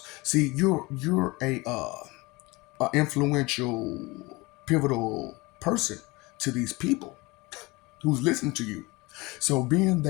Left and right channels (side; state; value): right; quieter; 23.6 dB